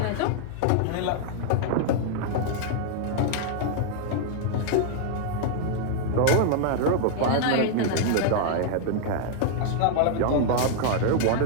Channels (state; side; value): different; both; correlation -0.01